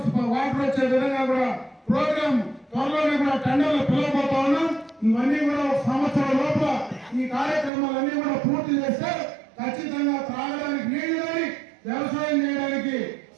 వాటర్ వచ్చే విధంగా కూడా ప్రోగ్రామ్ త్వరలోనే కూడా టెండర్లు పిలవబోతా ఉన్నాం. ఇవన్నీ కూడా ఒక సంవత్సరం లోపల ఈ కార్యక్రమాలన్నీ కూడా పూర్తి చేస్తే ఖచ్చితంగా త్రాగడానికి నీళ్లు కానీ వ్యవసాయం చేయడానికి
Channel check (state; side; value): drops out; left; at 7.7 s